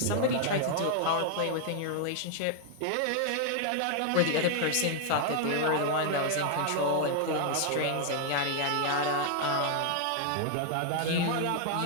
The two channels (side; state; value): both; different; correlation 0.00